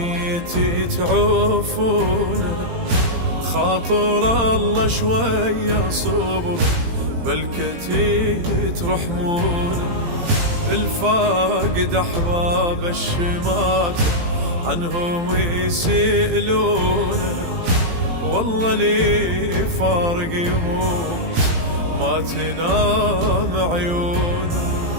يتعوفونه، خاطر الله شوية صبر بالكتي ترحمونه. الفاقد أحباب الشمات عنهم يسألونه، والله لي فارق يموت ما تنام عيونه.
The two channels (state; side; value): late; left; 18 ms